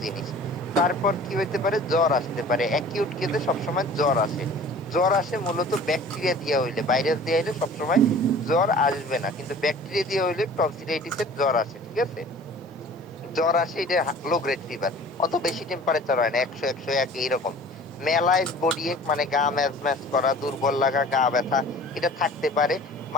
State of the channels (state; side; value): normal; both; correlation 0.45